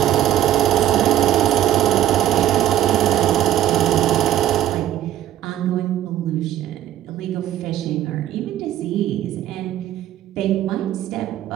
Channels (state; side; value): quieter; left; 12.2 dB